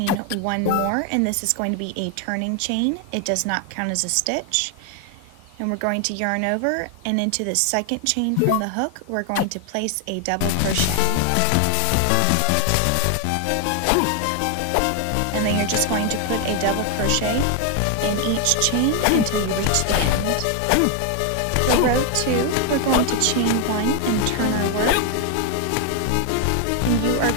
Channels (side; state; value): both; different; correlation 0.01